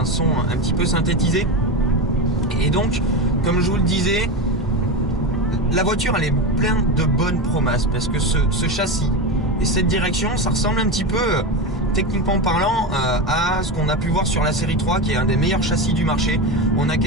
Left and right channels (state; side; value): normal; both; correlation 0.19